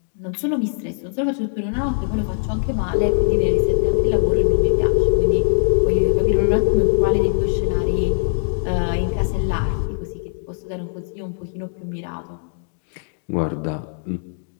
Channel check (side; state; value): right; silent; digital silence